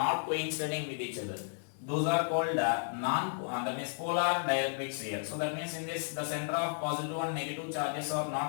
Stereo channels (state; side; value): silent; right; digital silence